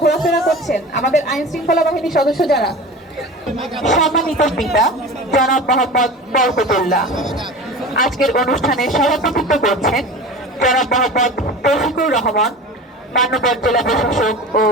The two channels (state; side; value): normal; both; correlation 0.34